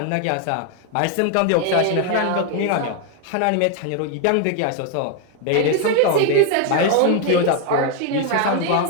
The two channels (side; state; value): both; different; correlation 0.01